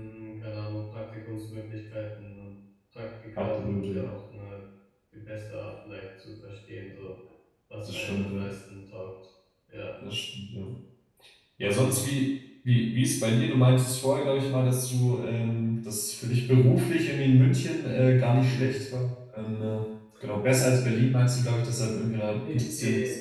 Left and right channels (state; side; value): identical; both; correlation 1.00